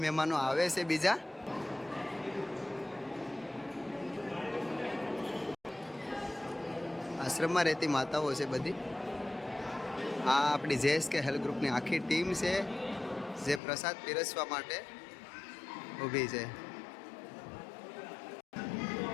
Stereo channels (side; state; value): right; drops out; at 13.6 s